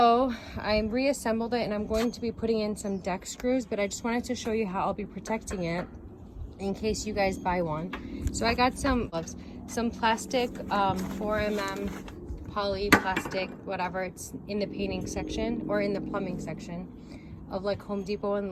I reassembled it and I'm going to be putting in some deck screws, but I just wanted to show you how I'll be protecting it in case you guys buy one. So I got some plastic 4mm poly plastic, whatever, it's in the painting section or in the plumbing section of like Home Depot and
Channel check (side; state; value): both; identical; correlation 1.00